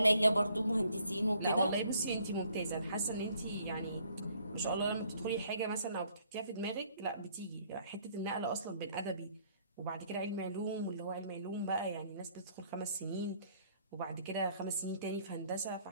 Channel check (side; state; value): both; inverted; correlation -0.64